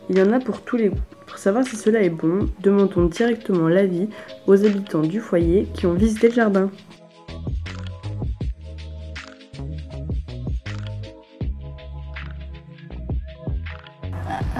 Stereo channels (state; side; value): identical; both; correlation 1.00